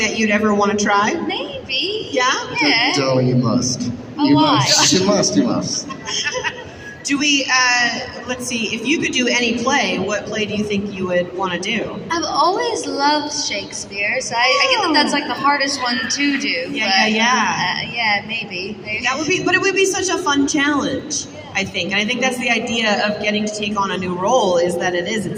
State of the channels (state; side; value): identical; both; correlation 1.00